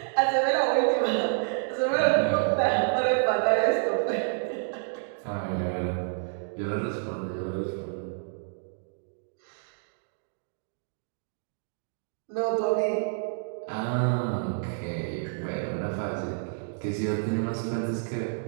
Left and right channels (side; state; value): left; silent; digital silence